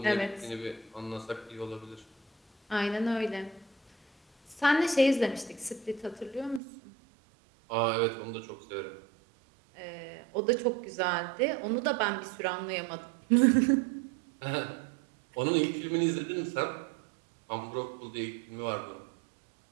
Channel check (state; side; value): drops out; left; at 6.6 s